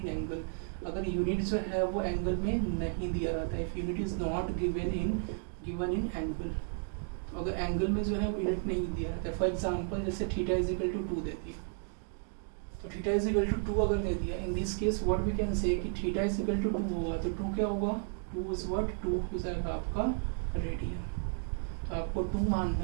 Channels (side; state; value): left; silent; 56 dB below the other